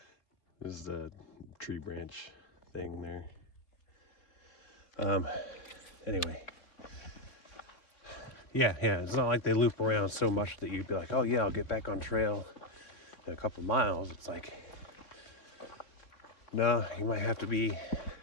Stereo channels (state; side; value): late; right; 3.8 ms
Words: is the tree branch thing there. Anyway. Yeah, it's not like they loop around so much that you'd be like, oh yeah, I'll get back on trail in a couple miles. It's like, no, you might have to be